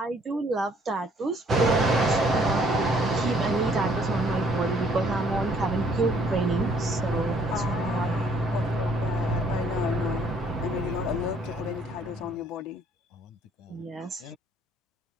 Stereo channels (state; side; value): normal; both; correlation 0.63